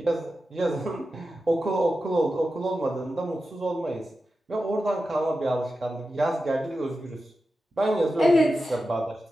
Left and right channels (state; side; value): normal; both; correlation 0.92